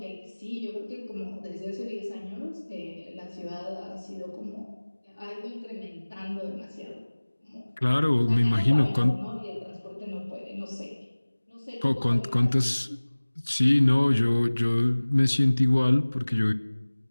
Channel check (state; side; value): inverted; both; correlation -1.00